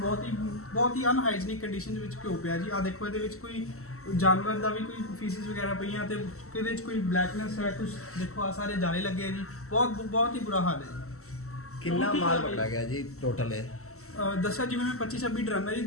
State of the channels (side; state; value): right; late; 0.63 ms